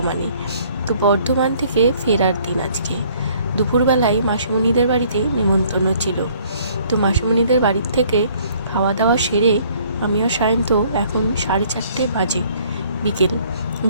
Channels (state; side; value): inverted; both; correlation -0.59